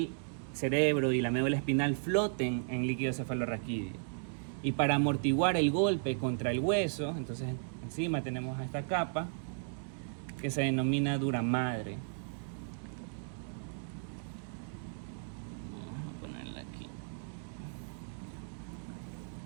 cerebro y la médula espinal floten en líquido cefalorraquídeo. Y para amortiguar el golpe contra el hueso, entonces encima tenemos esta capa que se denomina duramadre. Vamos a ponerla aquí,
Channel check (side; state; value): left; silent; digital silence